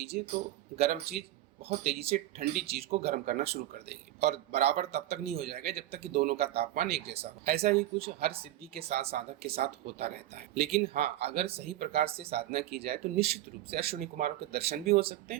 तो गर्म चीज बहुत तेजी से ठंडी चीज को गर्म करना शुरू कर देगी, और बराबर तब तक नहीं हो जाएगा जब तक कि दोनों का तापमान एक जैसा हो। ऐसा ही कुछ हर सिद्धि के साथ साधक के साथ होता रहता है। लेकिन हाँ, अगर सही प्रकार से साधना की जाए तो निश्चित रूप से अश्विनी कुमारों के दर्शन भी हो सकते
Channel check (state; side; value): quieter; left; 14.3 dB